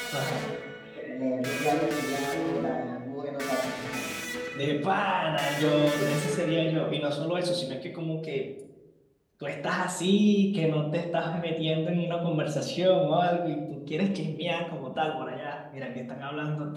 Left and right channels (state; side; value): identical; both; correlation 1.00